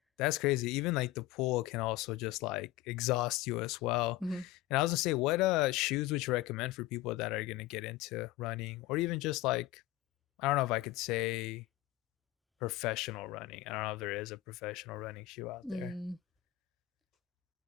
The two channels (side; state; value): right; quieter; 16.3 dB